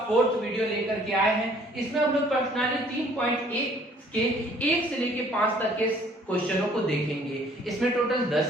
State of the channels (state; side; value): normal; both; correlation 0.58